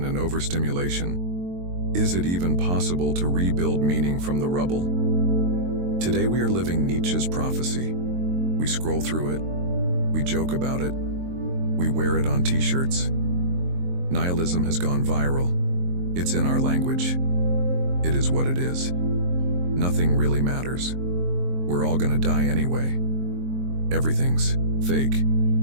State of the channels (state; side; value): late; left; 23 ms